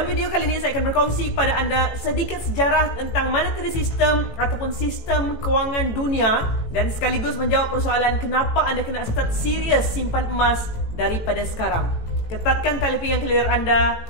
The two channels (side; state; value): right; late; 18 ms